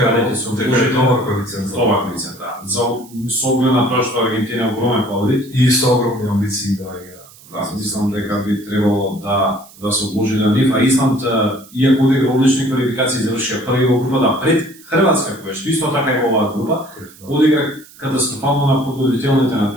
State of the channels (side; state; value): right; noise; hiss, 23 dB below the sound